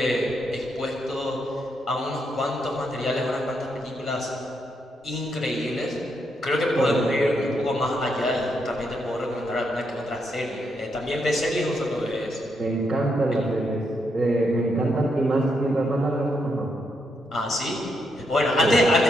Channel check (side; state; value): both; normal; correlation 0.79